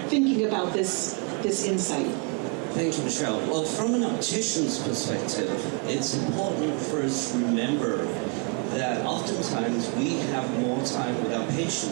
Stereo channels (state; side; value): quieter; left; 34.9 dB